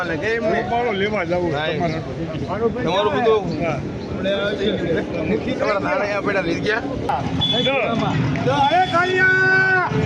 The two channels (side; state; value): both; identical; correlation 1.00